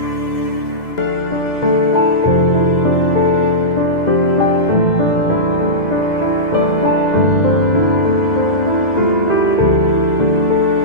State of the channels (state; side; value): late; right; 2.0 ms